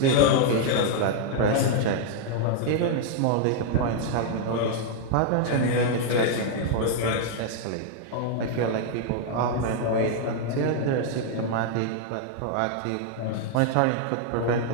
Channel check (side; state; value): both; different; correlation 0.00